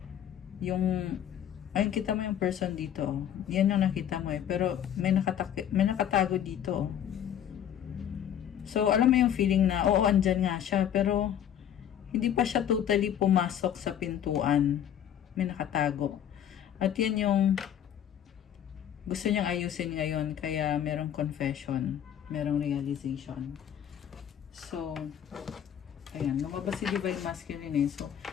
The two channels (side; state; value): right; quieter; 9.8 dB